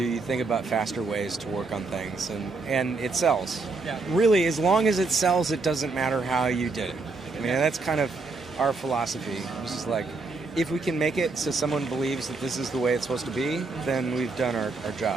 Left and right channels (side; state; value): left; quieter; 3.8 dB